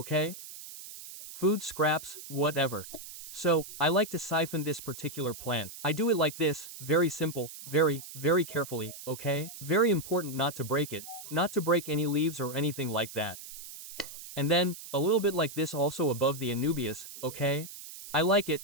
Food scraps, whatever. So, I like to siphon this particular plant. I do it like this, very simple, very carefully, okay? Very important not to break it, not to break any leaves or anything like that. And then, a little bit like this also above the Anubias, okay? I like it,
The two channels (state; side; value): noise; right; hiss, 13 dB below the sound